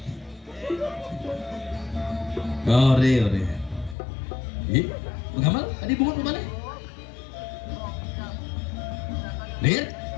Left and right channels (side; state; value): right; drops out; at 4.0 s